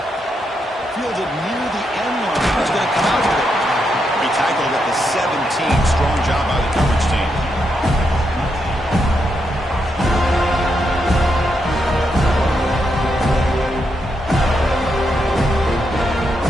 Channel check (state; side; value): normal; both; correlation 0.82